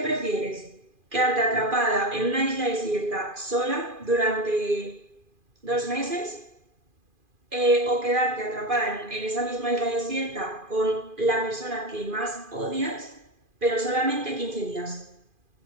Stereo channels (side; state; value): left; late; 2.4 ms